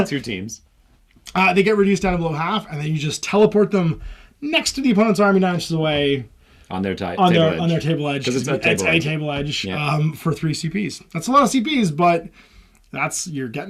2 teams. They get reduced down to below half, and then you just teleport them next to the opponent's army 9 inches away on their table edge. Because it's a table edge for 3 CPs. That's a lot of CPs, but you're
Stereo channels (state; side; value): identical; both; correlation 1.00